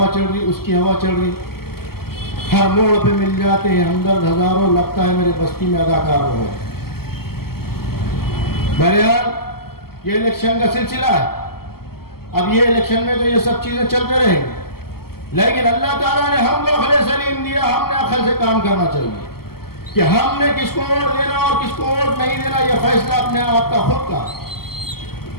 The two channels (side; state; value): right; late; 0.95 ms